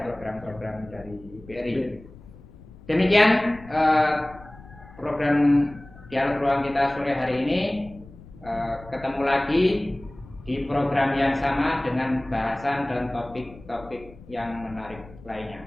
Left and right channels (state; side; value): noise; left; rumble, 20 dB below the sound